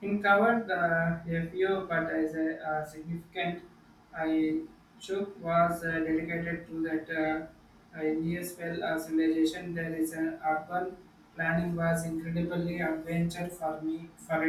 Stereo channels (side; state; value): both; identical; correlation 1.00